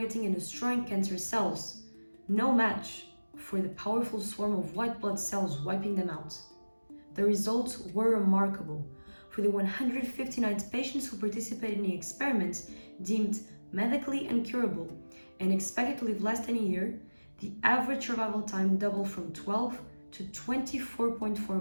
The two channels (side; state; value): both; inverted; correlation -1.00